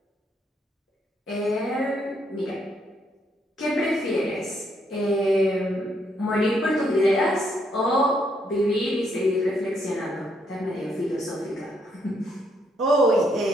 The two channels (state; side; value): normal; both; correlation 0.74